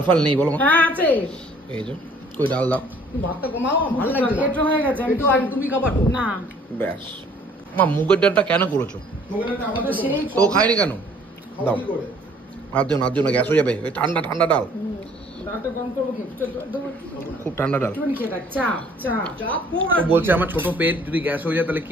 ফাল নেই বলো? হ্যাঁ আছে, এই যে কই ডাল দাও। তুমি ভাতটা কমাও, ভালো লাগছে না। পেট হয়ে গেছে, আমি তো আগে তুমি খাবার তো না। ব্যাস মা মুগের ডালটা কেন করেছো? তো সেই তো খাইনি কেন? দাও আর দিও না, দিও না, গ্যাস হয়ে যাবে। ওই ঠান্ডা ঠান্ডা ডাল, ডালটা গরম করবো কি? খুব ঠান্ডা ডাল। একটুখানি খেয়ে থাক, চা চা চাপ ও বলছে আমার ছোট পেট, যদি গ্যাস হয়ে যায় তাহলে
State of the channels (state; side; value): normal; both; correlation 0.57